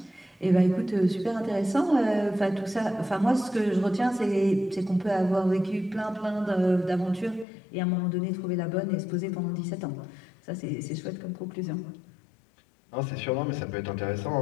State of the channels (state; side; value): drops out; right; at 7.5 s